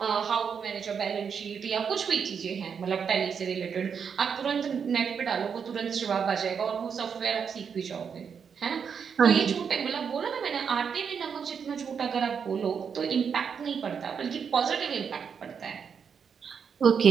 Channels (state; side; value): quieter; left; 6.7 dB